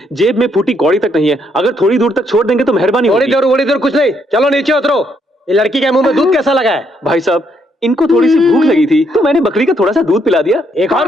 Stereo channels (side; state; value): both; normal; correlation 0.73